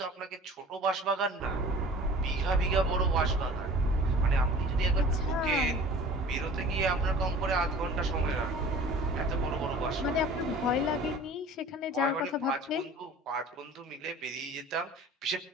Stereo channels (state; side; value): normal; both; correlation 0.44